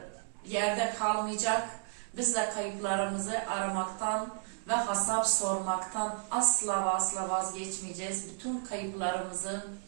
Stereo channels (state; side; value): silent; left; 56 dB below the other